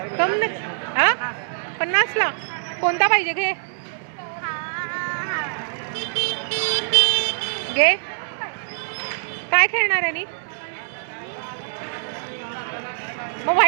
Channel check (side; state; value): left; silent; 61 dB below the other